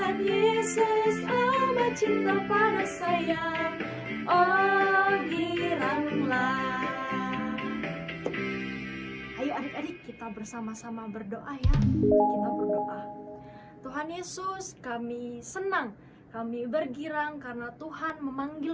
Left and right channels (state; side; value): identical; both; correlation 1.00